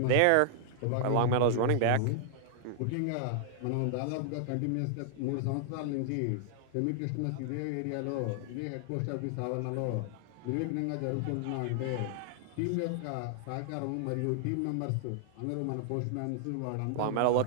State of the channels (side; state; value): both; different; correlation -0.01